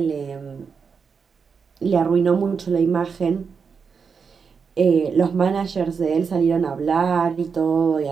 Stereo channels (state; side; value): quieter; left; 5.8 dB